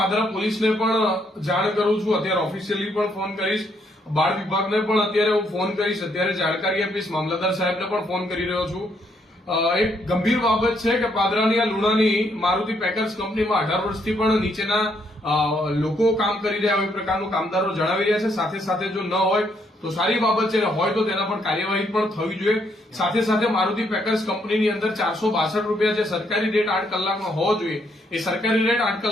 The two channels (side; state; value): both; normal; correlation 0.73